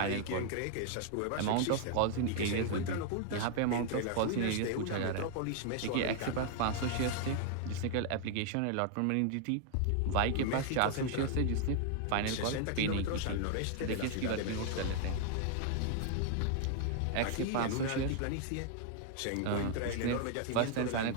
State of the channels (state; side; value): different; both; correlation 0.00